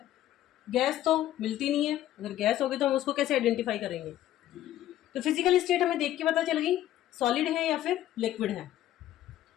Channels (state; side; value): quieter; right; 13.1 dB